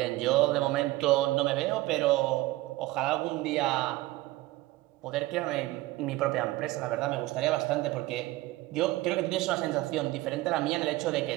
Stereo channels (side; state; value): left; quieter; 18.7 dB